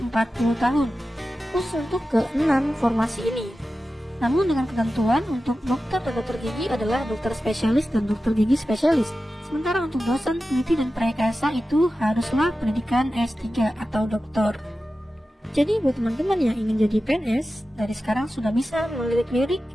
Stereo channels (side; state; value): both; normal; correlation 0.93